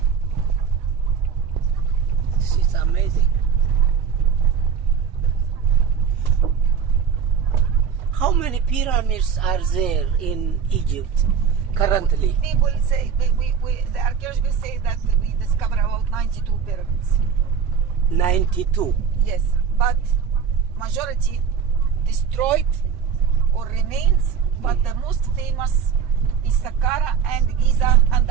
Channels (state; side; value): quieter; left; 6.9 dB